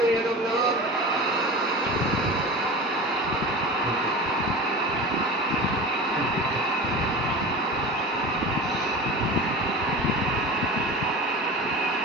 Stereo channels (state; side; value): normal; both; correlation 0.32